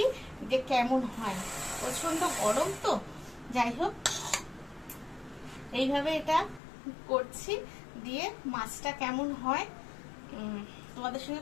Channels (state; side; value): drops out; right; at 6.6 s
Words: যে কেমন হয়। প্রচন্ড গরম তো, যাই হোক এইভাবে এটা করছি। দিয়ে মাছটা কেমন হয় তোমাদের